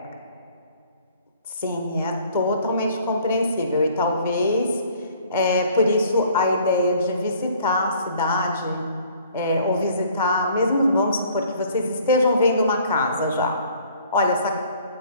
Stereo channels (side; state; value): both; inverted; correlation -0.56